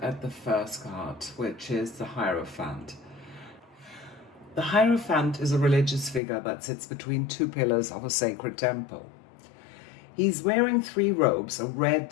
at the first card, which is the Hierophant. The Hierophant is a religious figure that sits between two pillars of a sacred temple. He's wearing three robes, a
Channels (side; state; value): right; drops out; at 6.2 s